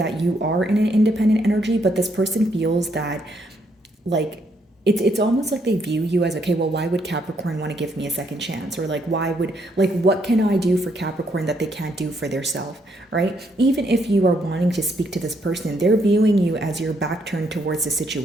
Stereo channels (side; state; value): both; normal; correlation 0.74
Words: you are in an independent energy, but this person feels that like it's almost like they view you as, okay, well, why would Capricorn want to give me a second chance? Or like, what can I do for Capricorn that they can't do for their self, right? Even if you are wanting to speak to this person, they're viewing you as your back turned towards the